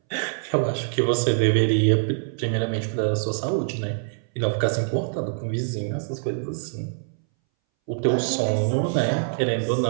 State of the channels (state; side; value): silent; left; 61 dB below the other